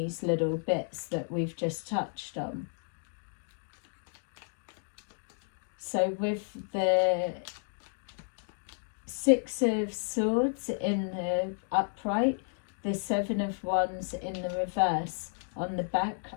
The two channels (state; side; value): silent; right; digital silence